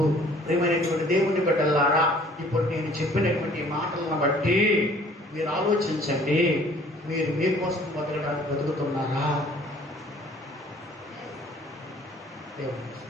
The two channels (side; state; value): both; normal; correlation 0.55